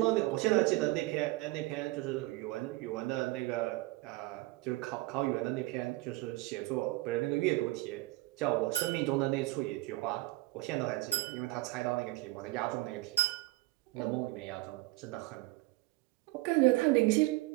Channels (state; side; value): quieter; left; 20.1 dB